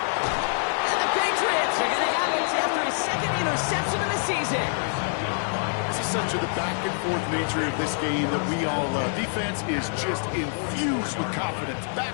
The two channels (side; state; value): right; silent; 61 dB below the other